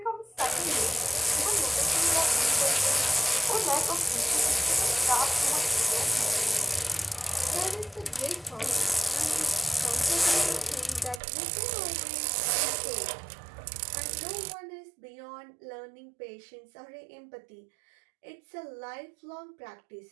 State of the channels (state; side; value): drops out; left; at 11.2 s